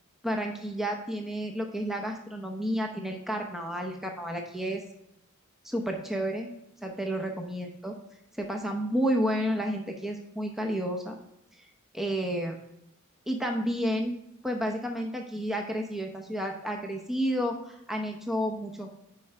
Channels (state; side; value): normal; both; correlation 0.74